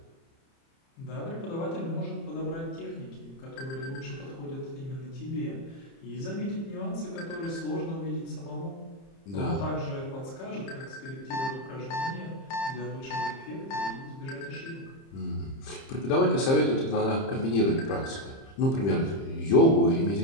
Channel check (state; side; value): late; right; 30 ms